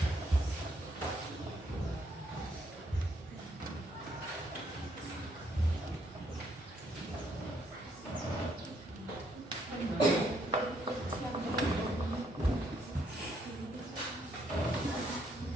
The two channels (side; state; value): both; normal; correlation 0.71